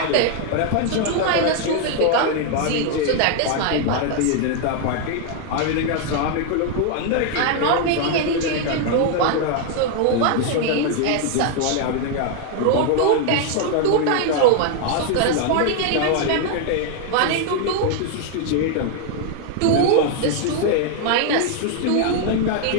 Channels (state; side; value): different; both; correlation 0.00